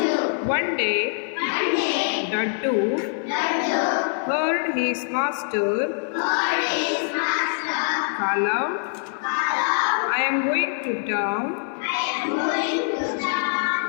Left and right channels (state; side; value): silent; right; digital silence